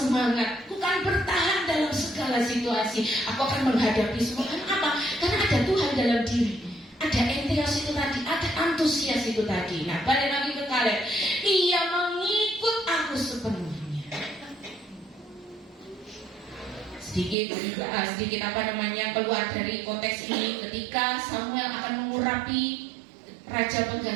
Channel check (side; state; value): left; drops out; at 17.4 s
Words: aku kan bertahan dalam segala situasi, aku akan menghadapi semua. Kenapa? Karena ada Tuhan dalam diri, ada entheos itu tadi, ada antusias itu tadi. Nah, balik lagi ke Kaleb, ia mengikut aku sepenuhnya. Sedikit keluar dari konteks ini, ketika Samuel akan mengurapi raja